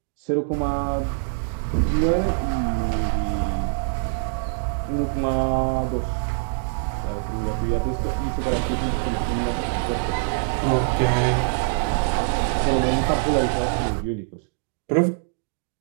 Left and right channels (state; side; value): silent; left; digital silence